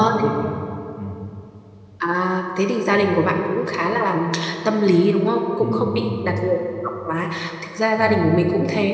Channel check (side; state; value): both; identical; correlation 1.00